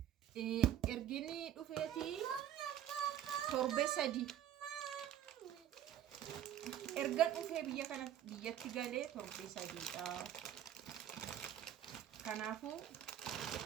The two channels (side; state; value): left; quieter; 11.2 dB